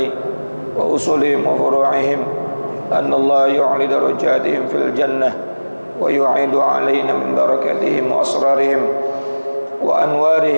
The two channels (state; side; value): inverted; both; correlation -1.00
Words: wa usulihim wa furu'ihim anna Allah yu'li darajatihim fil jannah wa yu'idu alaina min barakatihim wa asrarihim wa